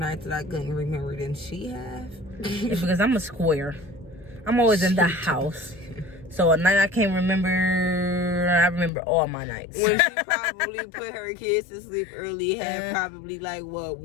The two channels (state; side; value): drops out; right; at 8.9 s